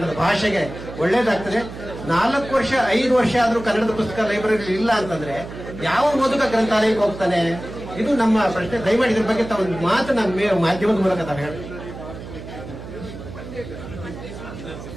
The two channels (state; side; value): noise; right; hum, 12 dB below the sound